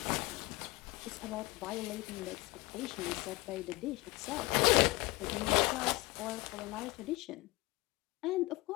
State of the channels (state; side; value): quieter; right; 21.9 dB